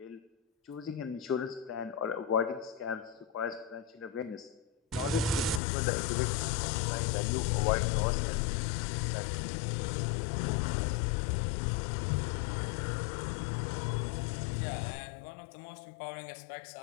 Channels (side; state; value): right; drops out; at 5.6 s